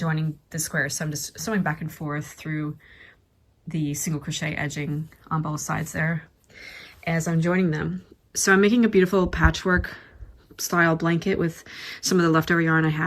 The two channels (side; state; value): both; identical; correlation 1.00